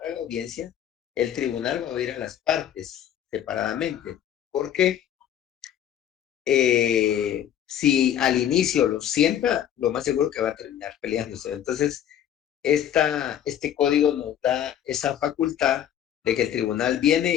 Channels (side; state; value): right; quieter; 10.2 dB